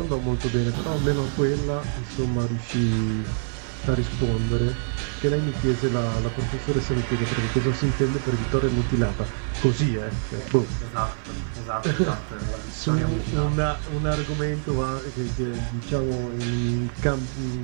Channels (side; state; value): left; silent; digital silence